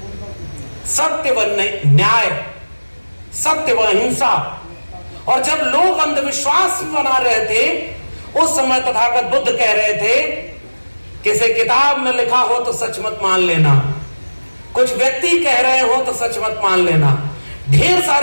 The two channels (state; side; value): inverted; both; correlation -1.00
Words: सत्य व न्याय, सत्य व अहिंसा। और जब लोग अंधविश्वास बना रहे थे, उस समय तथागत बुद्ध कह रहे थे, किसी किताब में लिखा हो तो सच मत मान लेना, कुछ व्यक्ति कह रहे हो तो सच मत मान लेना, ढेर